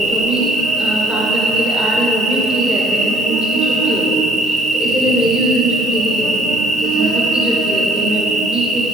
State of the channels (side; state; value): both; normal; correlation 0.59